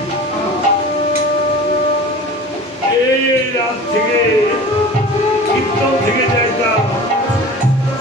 এই রাত থেকে কীর্তন থেকে যাইতাম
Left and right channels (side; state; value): both; normal; correlation 0.38